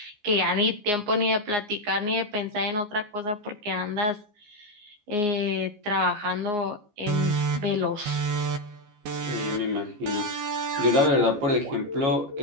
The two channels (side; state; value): left; late; 14 ms